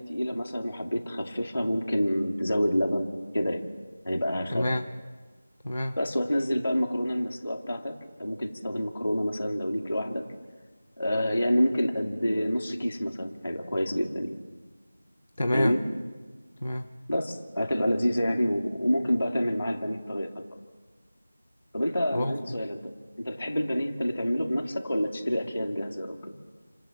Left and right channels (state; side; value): inverted; both; correlation -0.96